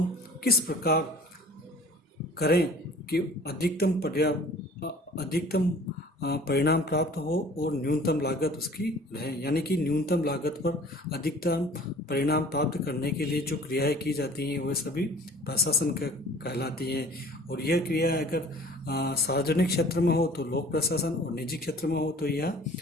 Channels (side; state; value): both; normal; correlation 0.48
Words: किस प्रकार करें कि अधिकतम परिणाम प्राप्त हो और न्यूनतम लागत उसकी रहे। यानी कि न्यूनतम लागत पर अधिकतम परिणाम प्राप्त करने के लिए जो क्रियाएं की जाती हैं वह सभी प्रशासन कहलाती हैं। और यह क्रिया अगर सार्वजनिक क्षेत्र में हो तो लोक प्रशासन और निजी क्षेत्र में हो तो यह